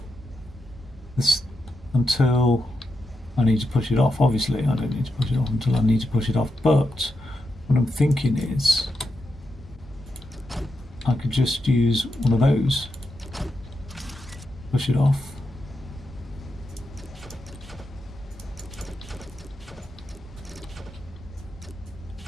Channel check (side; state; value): both; normal; correlation 0.86